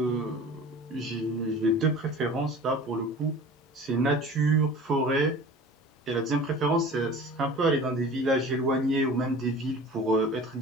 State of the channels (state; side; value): normal; both; correlation 0.40